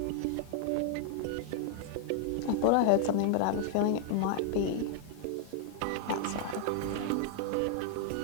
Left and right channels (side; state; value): both; different; correlation 0.00